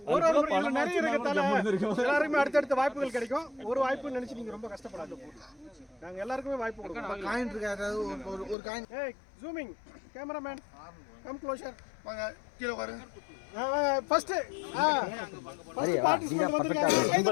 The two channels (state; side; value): drops out; right; at 8.6 s